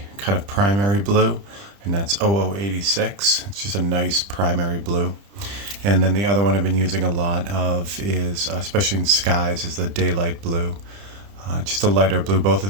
kind of primary blue, and that's 0086. It's just a nice primary blue. And then the other one I've been using a lot of is, especially in skies, is the daylight blue. Just a lighter blue. Both of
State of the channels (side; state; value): left; late; 30 ms